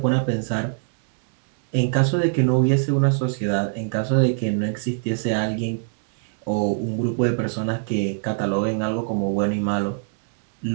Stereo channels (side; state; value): left; silent; digital silence